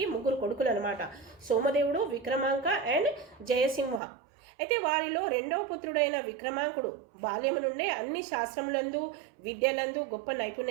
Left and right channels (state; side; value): drops out; left; at 4.0 s